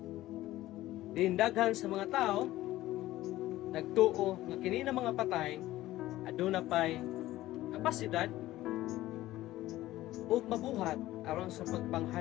Daghan sa mga tao nagtuo nga kini na mga patay aduna pay kapasidad ug mabuhat aron sa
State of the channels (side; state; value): right; quieter; 15.9 dB